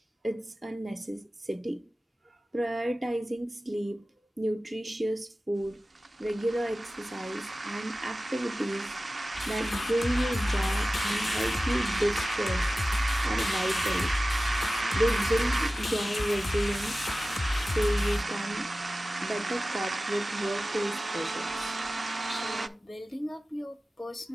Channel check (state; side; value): normal; both; correlation 0.96